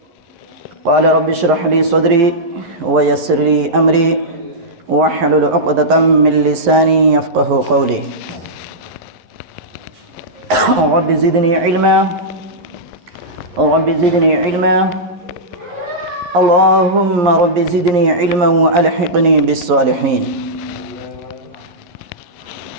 قال رب اشرح لي صدري ويسر لي أمري واحلل عقدة من لساني يفقه قولي رب زدني علما رب زدني علما اللهم رب زدني علما وألحقني بالصالحين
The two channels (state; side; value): late; left; 11 ms